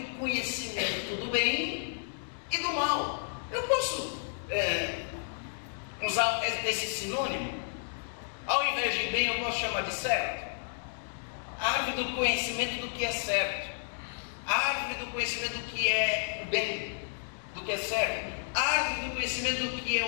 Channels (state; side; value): silent; right; 57 dB below the other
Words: do conhecimento do bem e do mal. Eu posso usar esse sinônimo? Ao invés de bem, eu posso chamar de certo? Árvore do conhecimento do que é certo. Árvore do conhecimento do que é o bem, do que é certo. Árvore do conhecimento do que é